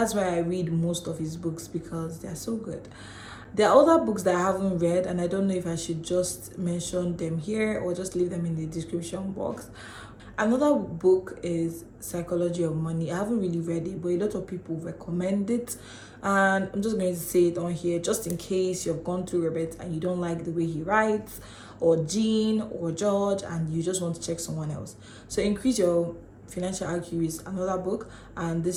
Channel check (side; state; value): both; identical; correlation 1.00